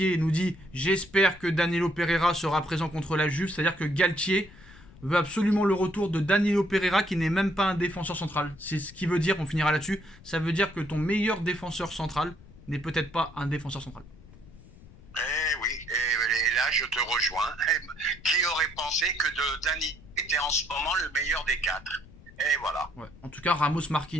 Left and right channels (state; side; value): noise; left; rumble, 21 dB below the sound